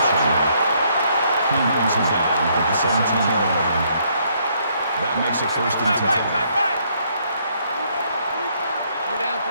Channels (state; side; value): inverted; both; correlation -0.70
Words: King brings him down at the 17-yard line. That makes it first and 10. 3